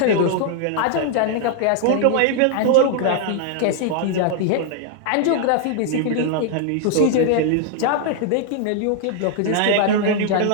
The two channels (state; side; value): different; both; correlation 0.00